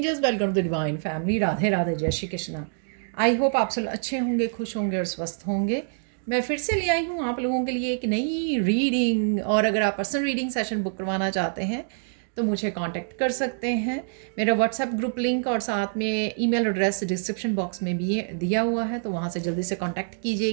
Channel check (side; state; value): left; silent; digital silence